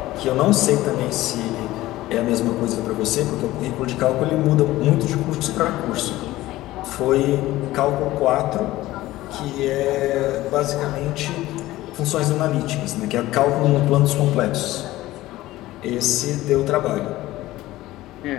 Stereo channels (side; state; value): right; quieter; 16.7 dB